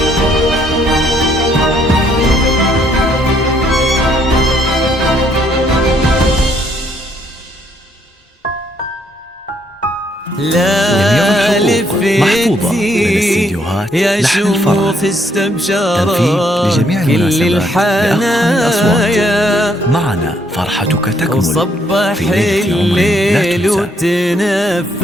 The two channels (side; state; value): both; normal; correlation 0.69